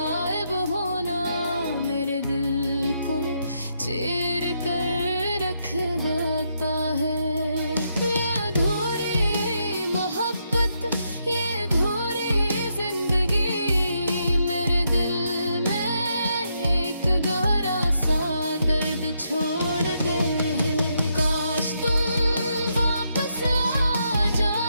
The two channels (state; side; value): inverted; both; correlation -0.79